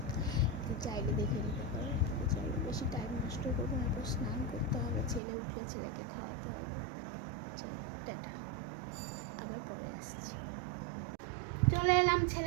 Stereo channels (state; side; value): drops out; left; at 5.2 s